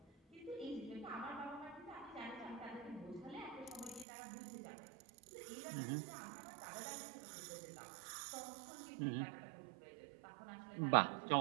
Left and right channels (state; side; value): drops out; left; at 4.0 s